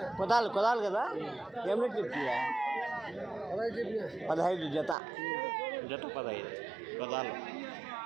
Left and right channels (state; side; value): drops out; left; at 5.0 s